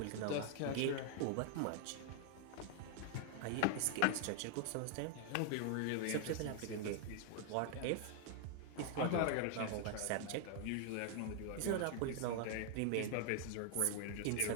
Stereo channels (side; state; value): both; different; correlation 0.00